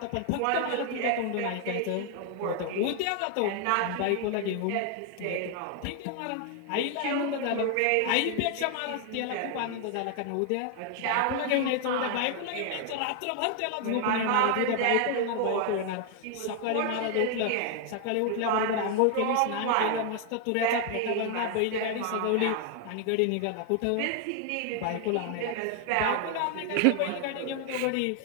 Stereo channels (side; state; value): both; different; correlation 0.00